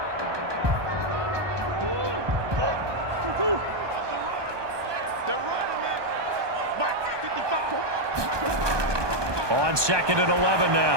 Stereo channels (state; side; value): late; left; 1.2 ms